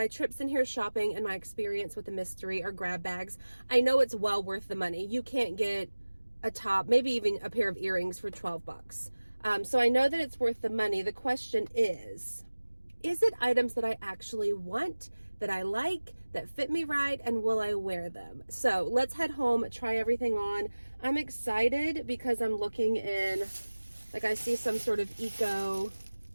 trips in here shopping and my experience with the mystery or grab bags, I know it's well worth the money. You can't get a top, maybe even a pair of earrings for 12 bucks. So I know that it's worth the money. The question is it items that I actually want, that I like, that fit me right, and will I wear them? So let's head home, try everything on. I'm excited because I'm looking in, like I see some sort of eco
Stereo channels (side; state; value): both; inverted; correlation -1.00